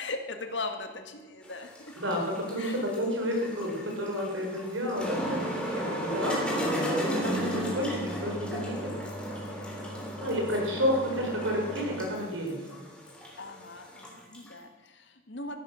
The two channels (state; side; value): normal; both; correlation 0.20